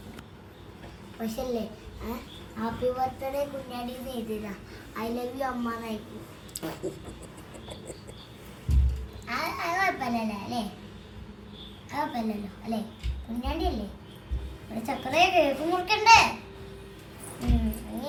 പക്ഷേ അല്ലേ, ഹാപ്പി ബർത്ത്ഡേ കുഞ്ഞാടി എഴുതിയതാ. ഐ ലവ് യു അമ്മ എന്നായിരിക്കും. അത് കുഴപ്പമില്ലല്ലോ അല്ലേ? കുഴപ്പമില്ലല്ലോ അല്ലേ? കുഞ്ഞാണ്ടി അല്ലേ? ഇവിടെ ചക്കരയെ കേക്ക് മുറിക്കണ്ടേ? ഇനി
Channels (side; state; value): both; identical; correlation 1.00